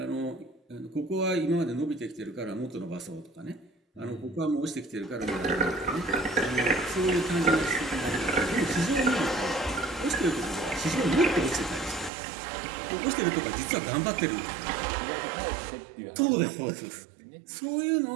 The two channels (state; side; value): drops out; left; at 12.1 s